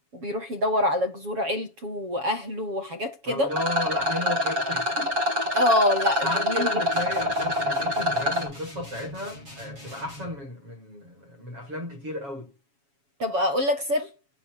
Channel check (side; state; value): left; late; 7.2 ms